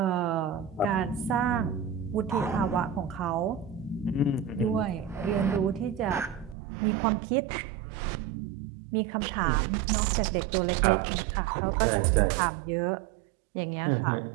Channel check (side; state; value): left; drops out; at 6.6 s